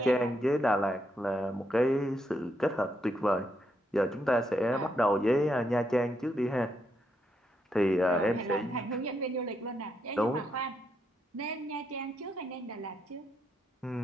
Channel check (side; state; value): both; normal; correlation 0.79